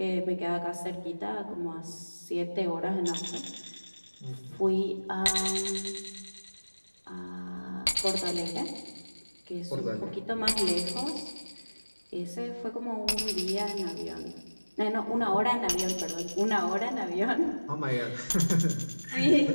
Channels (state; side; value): inverted; both; correlation -1.00